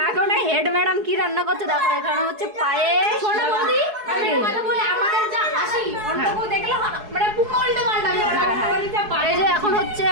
এখন এই হেড ম্যাডাম কি রান্না করছে দেখো। এখানে হচ্ছে পায়েস। এই যে এখন হচ্ছে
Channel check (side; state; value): left; late; 4.7 ms